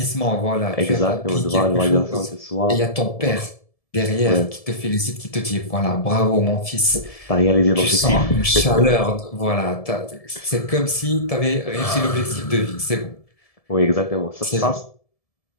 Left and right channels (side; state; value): right; late; 1.7 ms